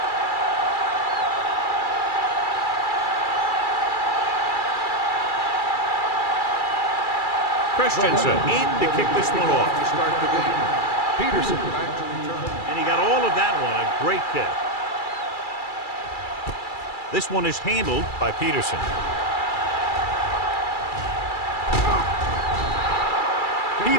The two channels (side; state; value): right; late; 2.3 ms